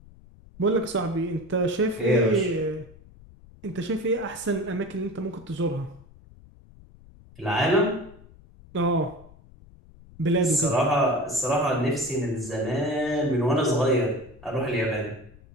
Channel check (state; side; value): noise; left; rumble, 23 dB below the sound